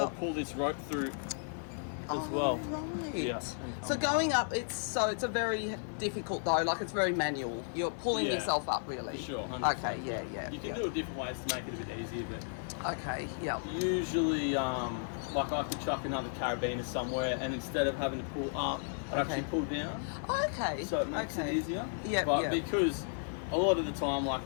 pull this rope through as well. Right. Yeah. So going up, it's a very difficult though. Like it's very manual. You're pulling yourself up, really. For sure. 100%. Okay. Yeah. You can do it different ways to make it a bit easier, but okay. Yeah. Usually, like I could chuck another carabiner somewhere, and instead of having to pull up, I actually pull down. Okay. So it makes it easier. Yeah. But because a lot of the time,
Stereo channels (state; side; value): silent; right; 55 dB below the other